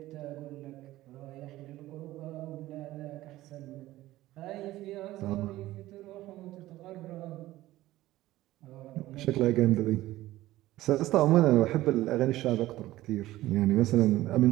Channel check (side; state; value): left; quieter; 16.2 dB